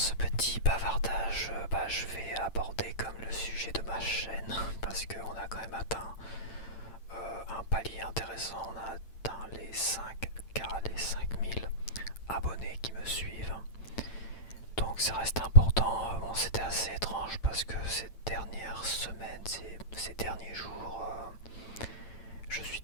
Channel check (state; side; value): late; right; 8.9 ms